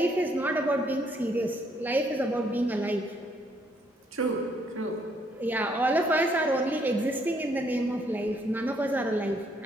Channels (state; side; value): normal; both; correlation 0.69